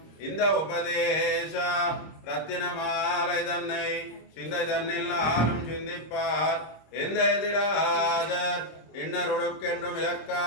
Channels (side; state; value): right; late; 26 ms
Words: इंद उपदेश रत्नमालैदन्नै सिंदैदन्निल्लालुम सिंदिप्पार इंदैदिराजर इन्नरुडुक्केंडु